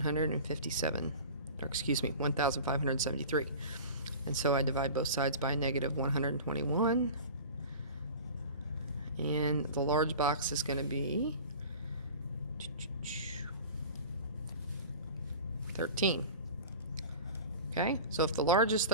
or excuse me, 1,573. And so I divide both sides by a -121. And the large box is going to be 13. Okay, so if the large is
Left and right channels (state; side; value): inverted; both; correlation -0.37